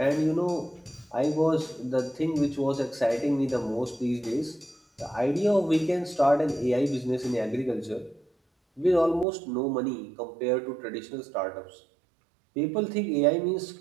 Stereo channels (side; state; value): left; drops out; at 9.2 s